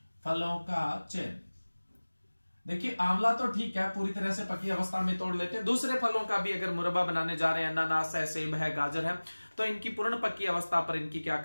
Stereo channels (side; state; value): both; inverted; correlation -1.00